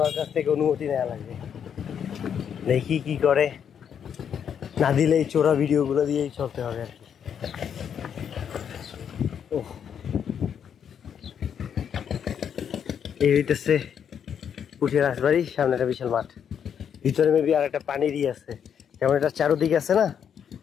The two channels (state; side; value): quieter; right; 8.1 dB